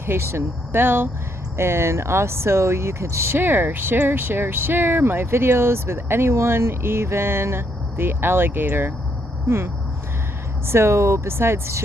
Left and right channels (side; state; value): both; normal; correlation 0.74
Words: bell. And also you could share my videos with anyone, even the alligator. So besides